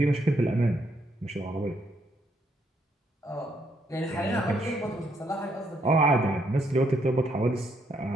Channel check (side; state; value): both; normal; correlation 0.73